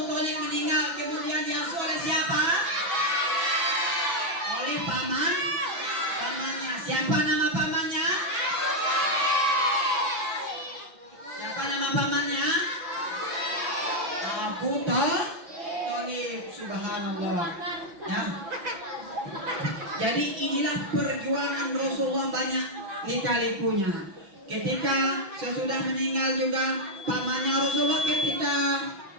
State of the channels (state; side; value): late; left; 5.9 ms